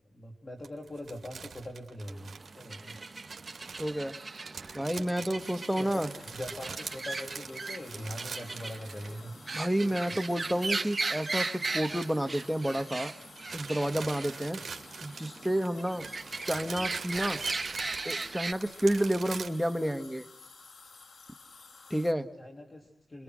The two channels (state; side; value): normal; both; correlation 0.98